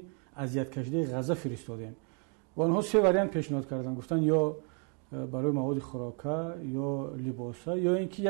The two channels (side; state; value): left; quieter; 38.6 dB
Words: اذیت کشیده غزه فرستادیم و آنها 3 واریانت پیشنهاد کردن، گفتن یا برای مواد خوراکه یا لباسه یا اینکه